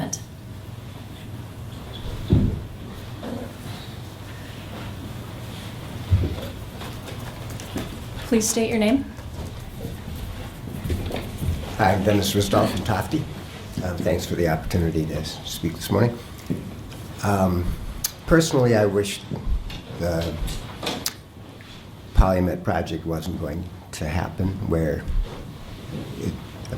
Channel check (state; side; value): identical; both; correlation 1.00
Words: Please state your name. Hi, I'm Dennis Ristoff from Tofty. Thanks for the opportunity to speak this morning. Personally, I wish the Polymet project wasn't going to happen where it